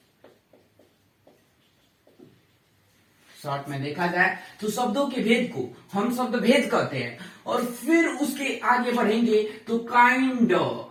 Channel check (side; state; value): both; identical; correlation 1.00